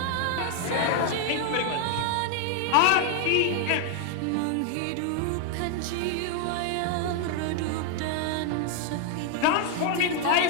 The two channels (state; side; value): different; both; correlation 0.00